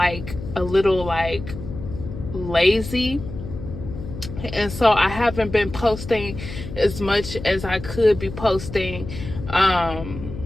a little lazy. And so I haven't been posting as much as I could be posting. I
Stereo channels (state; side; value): noise; left; hum, 10 dB below the sound